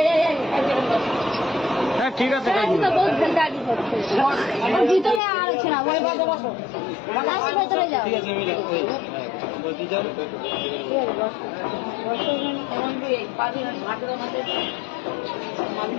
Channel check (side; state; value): right; drops out; at 5.2 s